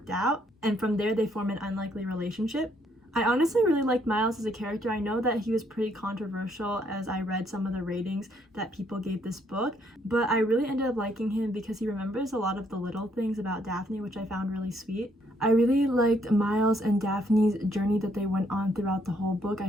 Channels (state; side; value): normal; both; correlation 0.70